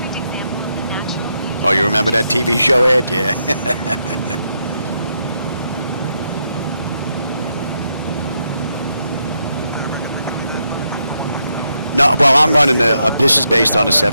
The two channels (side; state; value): both; inverted; correlation -0.80